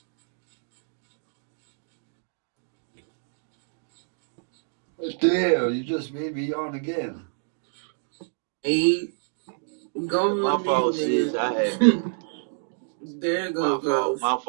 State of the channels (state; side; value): silent; left; digital silence